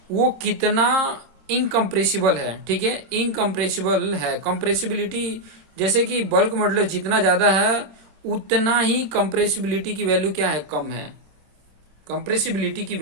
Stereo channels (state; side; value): late; left; 26 ms